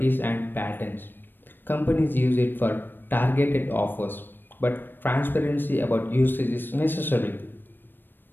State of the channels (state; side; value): late; right; 0.095 ms